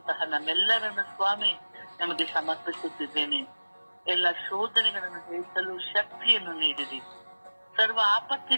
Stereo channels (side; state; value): both; inverted; correlation -1.00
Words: ನಮ್ಮೆಲ್ಲರನ್ನು ಸ್ವಾಮಿ ನಮಗೆ ಸಮರ್ಪಿಸುತ್ತಿದ್ದೇನೆ. ಎಲ್ಲ ಶೋಧನೆಗಳನ್ನು ಜಯಿಸಲು ಶಕ್ತಿಯನ್ನು ನೀಡಿರಿ. ಸರ್ವ